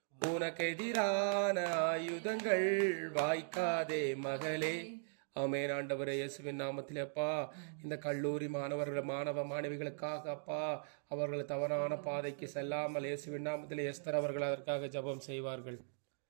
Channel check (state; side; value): silent; left; digital silence